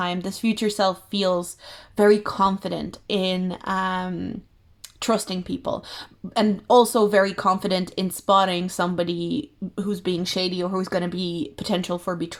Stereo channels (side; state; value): both; identical; correlation 1.00